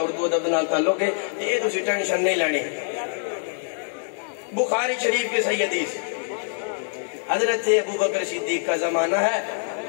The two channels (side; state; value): right; silent; digital silence